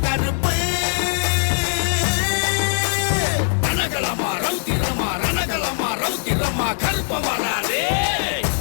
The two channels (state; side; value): silent; right; 64 dB below the other